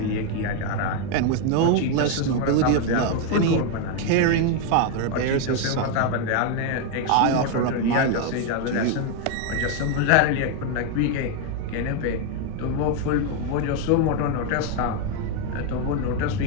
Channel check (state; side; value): different; both; correlation 0.01